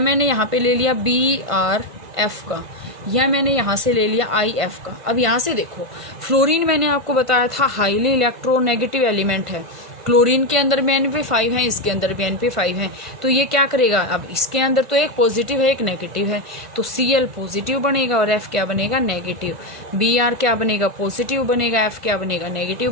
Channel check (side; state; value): left; late; 1.5 ms